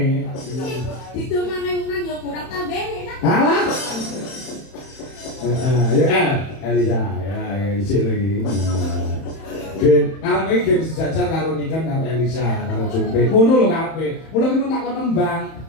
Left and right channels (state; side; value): late; right; 31 ms